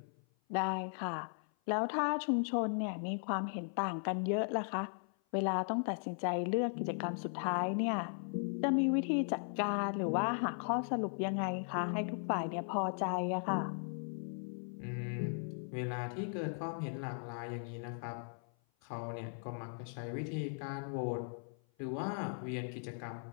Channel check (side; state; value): right; silent; 53 dB below the other